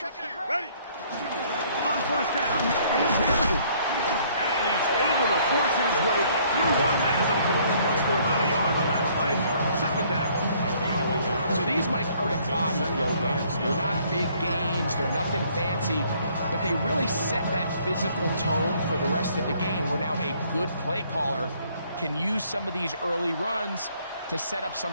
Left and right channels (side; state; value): both; inverted; correlation -0.62